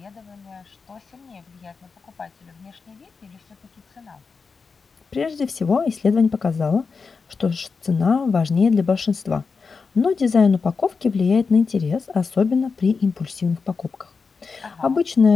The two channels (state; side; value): quieter; right; 4.9 dB